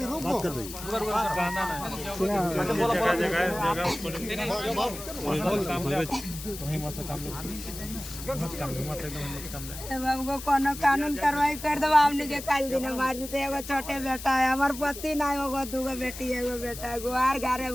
रुक बात कर दीजिए। बाबू कोनो कानून कार्रवाई कर दो, हमने के काल दिन मार देते। एगो छोटे बेटा है, हमार पति ना होगो, दूगो बेटी एगो बेटा गो, आर घरे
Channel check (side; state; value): left; noise; hiss, 11 dB below the sound